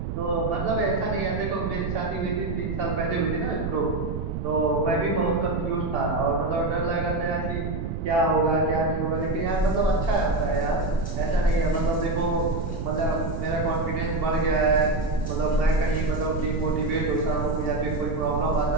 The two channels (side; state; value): right; noise; rumble, 4 dB below the sound